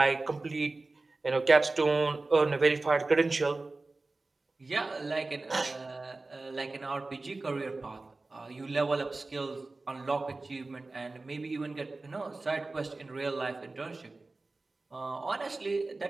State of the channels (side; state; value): left; quieter; 3.4 dB